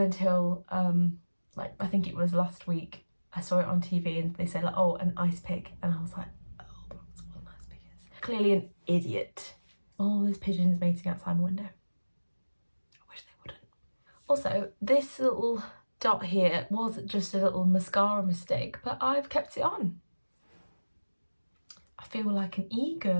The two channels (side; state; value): both; inverted; correlation -1.00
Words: until, I think it was last week, I saw it on TV and they said, oh, an ice pick. And I was like, oh, that's what an ice pick is. Clearly an idiot. All those pigeons mating outside my window. I wish they wouldn't. Also, this little dot here was just a little mascara mistake, but I've kept it on. I feel like an